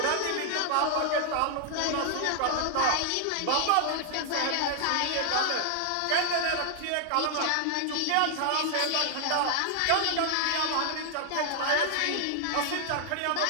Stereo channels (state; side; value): different; both; correlation 0.00